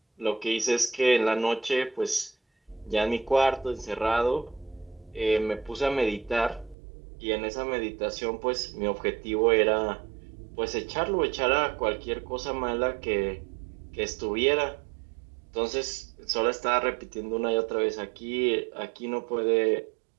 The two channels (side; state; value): left; drops out; at 6.8 s